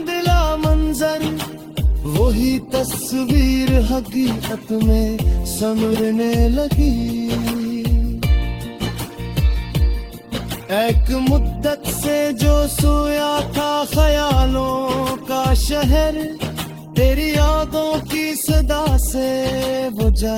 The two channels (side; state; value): both; identical; correlation 1.00